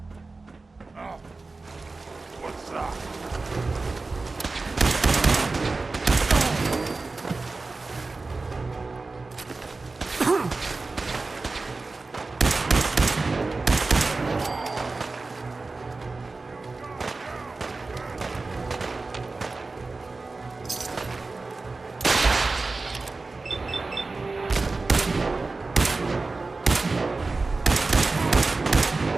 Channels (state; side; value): quieter; left; 3.7 dB